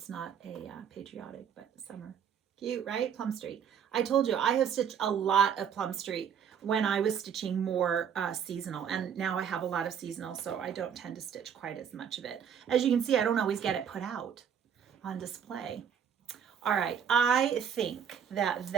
not a Patriotic, but summer. Cute, right? Plum Street. I told you, I have stitched a lot of Plum Street when I was stitching more seasonal. And now I have a lot of seasonal, so I don't tend to stitch quite as much of it. As you can see, I don't always get it put out on display. All right, I think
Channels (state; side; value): quieter; left; 8.0 dB